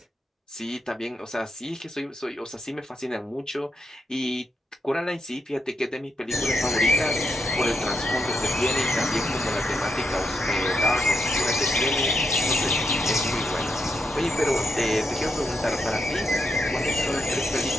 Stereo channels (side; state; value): both; normal; correlation 0.82